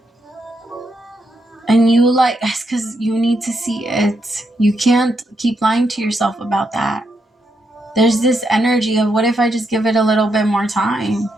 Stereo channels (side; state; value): both; normal; correlation 0.80